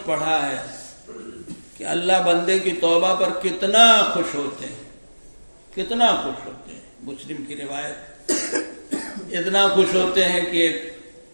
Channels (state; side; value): inverted; both; correlation -1.00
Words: پڑھا ہے کہ اللہ بندے کی توبہ پر کتنا خوش ہوتے ہیں، کتنا خوش ہوتے ہیں. مسلم کی روایت، اتنا خوش ہوتے ہیں کہ